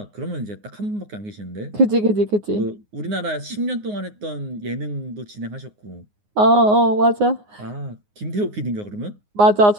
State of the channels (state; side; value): late; left; 9.6 ms